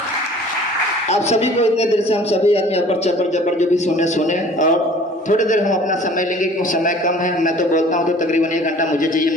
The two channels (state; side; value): normal; both; correlation 0.49